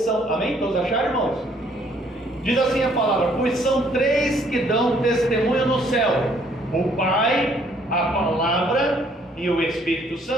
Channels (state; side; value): normal; both; correlation 0.64